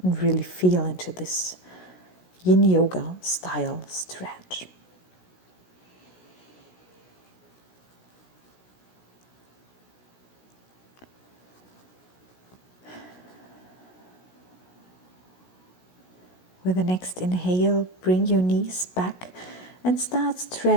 and really feel into this yin yoga style stretch. With the next inhale, bring your knees back and start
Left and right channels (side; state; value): right; late; 16 ms